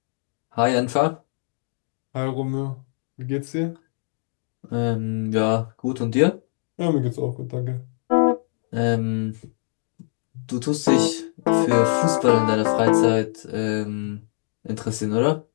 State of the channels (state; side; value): silent; right; digital silence